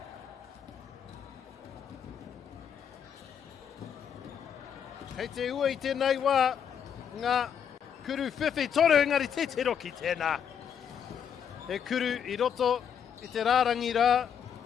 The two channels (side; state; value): right; quieter; 8.1 dB